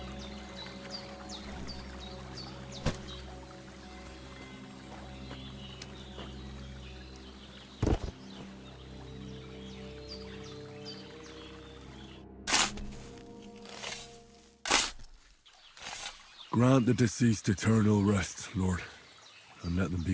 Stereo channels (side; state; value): both; identical; correlation 1.00